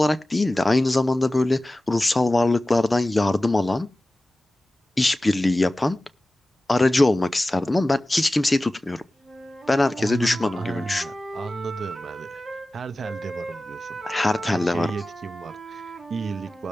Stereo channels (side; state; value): both; normal; correlation 0.96